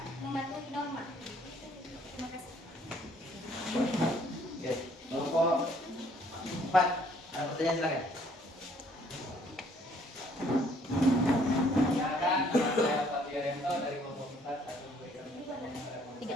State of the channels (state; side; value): normal; both; correlation 0.62